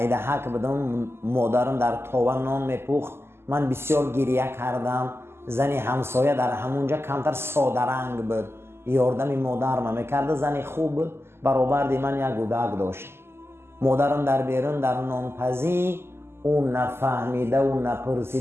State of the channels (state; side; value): late; left; 0.12 ms